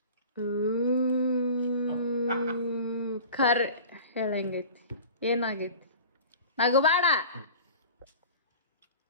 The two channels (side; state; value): both; inverted; correlation -0.39